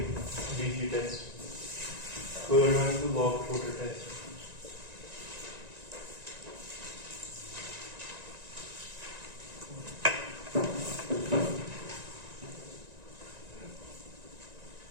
DC test. Third one is the log floater test.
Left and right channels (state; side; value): late; left; 1.9 ms